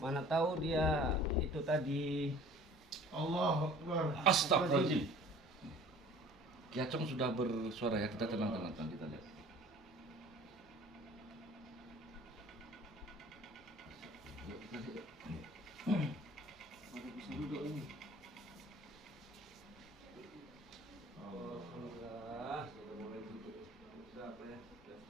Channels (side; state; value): both; normal; correlation 0.48